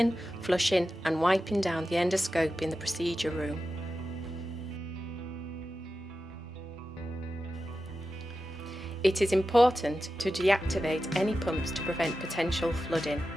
flushing and wiping down the endoscope in the procedure room. It is important to deactivate any pumps to prevent potential flooding.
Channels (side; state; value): both; normal; correlation 0.92